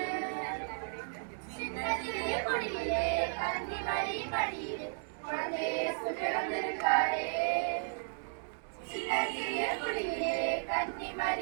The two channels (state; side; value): silent; left; digital silence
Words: சின்னஞ்சிறிய குடியிலே கன்னி மரி மடியிலே குழந்தை இயேசு பிறந்திருக்காரே. சின்னஞ்சிறிய குடியிலே கன்னி